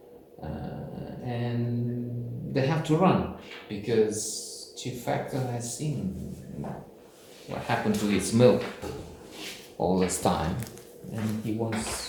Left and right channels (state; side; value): identical; both; correlation 1.00